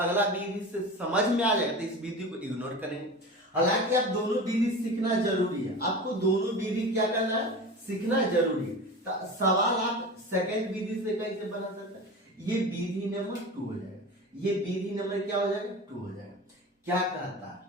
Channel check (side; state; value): both; normal; correlation 0.32